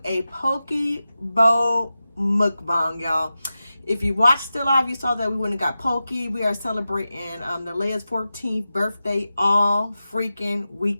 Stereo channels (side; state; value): both; inverted; correlation -0.93